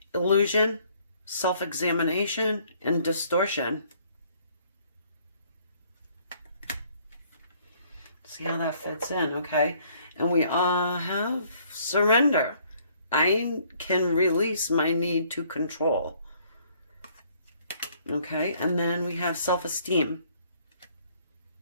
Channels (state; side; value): inverted; both; correlation -0.62